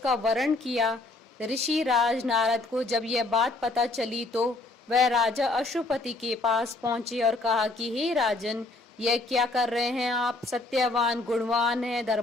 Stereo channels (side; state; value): right; quieter; 3.1 dB